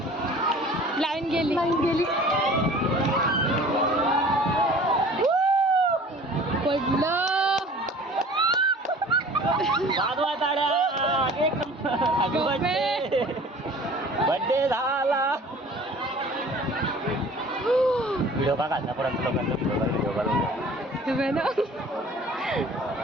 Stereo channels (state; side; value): normal; both; correlation 0.47